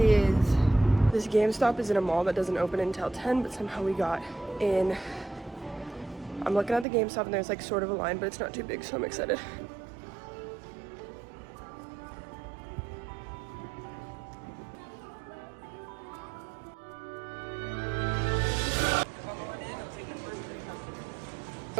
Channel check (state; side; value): drops out; left; at 6.9 s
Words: This GameStop is in a mall that doesn't open until 10, but somehow we got in. I'm looking at the GameStop and there's like sort of a line, but it's not too big, so I'm excited.